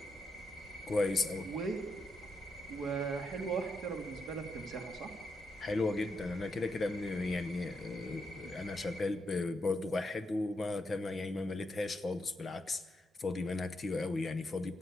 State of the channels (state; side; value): normal; both; correlation 0.82